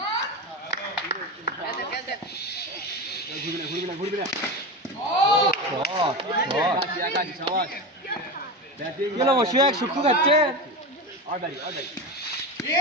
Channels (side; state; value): both; normal; correlation 0.22